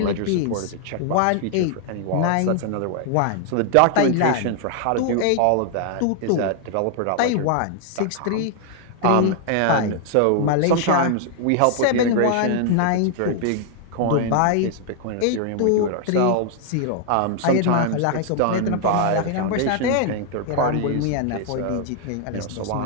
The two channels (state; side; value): different; both; correlation 0.00